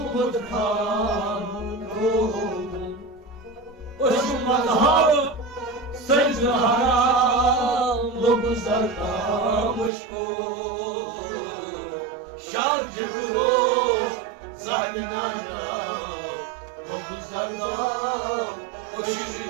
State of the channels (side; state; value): left; drops out; at 9.9 s